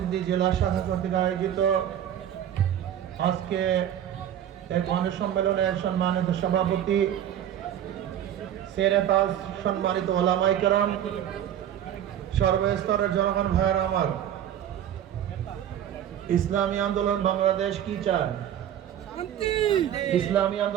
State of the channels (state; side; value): quieter; left; 10.5 dB